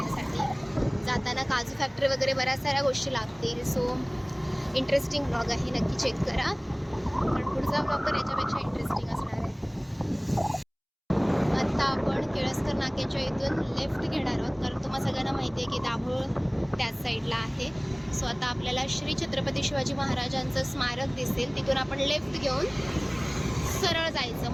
जाताना काजू फॅक्टरी वगैरे बऱ्याच साऱ्या गोष्टी लागतील. सो इंटरेस्टिंग ब्लॉग आहे, नक्की चेक करा. पण पुढचा ब्लॉग तर याच्यापेक्षा इंटरेस्टिंग असणार आहे. आता आपण केळसकर नाक्याच्या इथून लेफ्ट घेणार आहोत, कारण तुम्हाला सगळ्यांना माहिती आहे की दाभोळ त्याच साईडला आहे. सो आता आपल्याला श्री छत्रपती शिवाजी महाराजांचं स्मारक दिसेल, तिथून आपण लेफ्ट घेऊन सरळ जायचं.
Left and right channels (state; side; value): identical; both; correlation 1.00